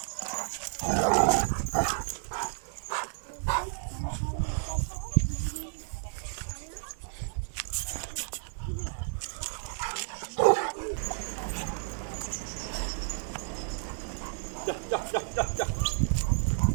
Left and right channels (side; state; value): left; silent; digital silence